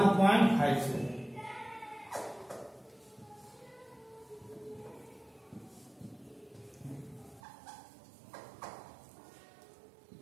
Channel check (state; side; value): drops out; left; at 7.4 s